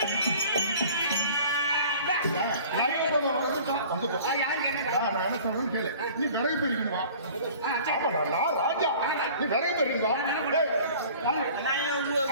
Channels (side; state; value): both; inverted; correlation -0.46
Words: நீ விரைவு பெறுவா ராஜா, நீ விரைவு பெறுங்க.